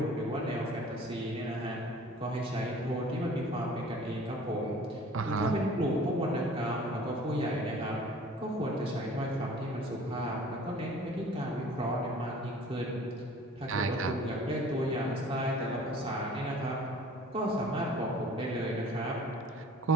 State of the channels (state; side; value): normal; both; correlation 0.48